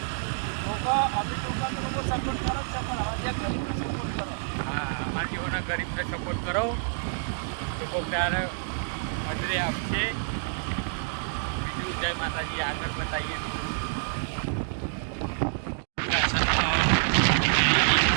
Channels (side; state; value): left; silent; digital silence